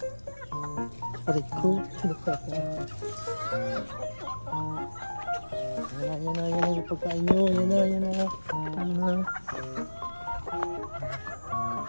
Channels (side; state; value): both; inverted; correlation -1.00